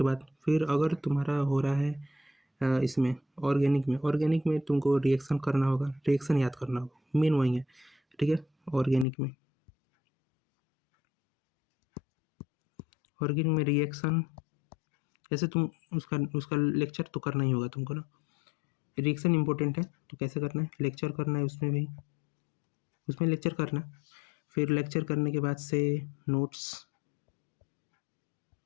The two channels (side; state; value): right; drops out; at 9.1 s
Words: बाद फिर अगर तुम्हारा हो रहा है इसमें ऑर्गेनिक में तुमको रिएक्शन करना होगा, रिएक्शन याद करना होगा, मेन वही है। ठीक है, ऑर्गेनिक में रिएक्शन, जैसे तुम उसका उसका लेक्चर तो करना ही होगा तुमको ना। रिएक्शन इंपॉर्टेंट है, तो कैसे करना है, लेक्चर करना है उसमें भी, उसमें लेक्चर करना। फिर लेक्चर करने के बाद से नोट्स,